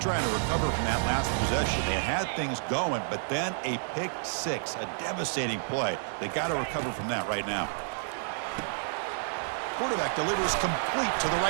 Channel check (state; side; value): silent; left; 58 dB below the other